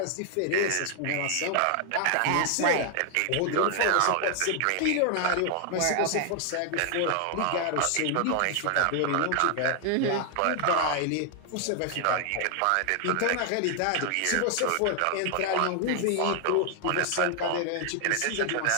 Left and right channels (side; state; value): both; different; correlation 0.00